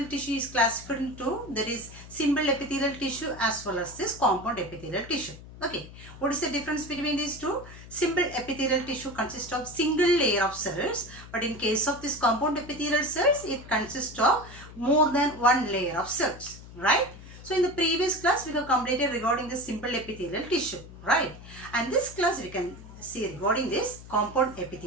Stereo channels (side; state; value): left; noise; hum, 16 dB below the sound